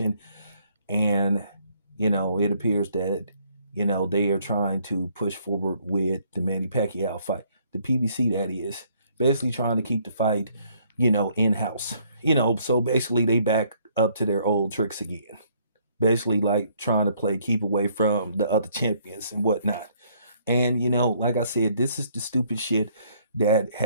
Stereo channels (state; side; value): inverted; both; correlation -0.65